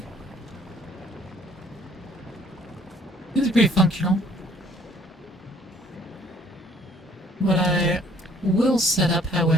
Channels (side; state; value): both; normal; correlation 0.59